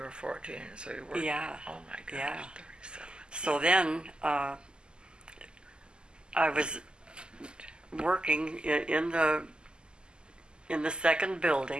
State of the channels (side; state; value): left; late; 0.048 ms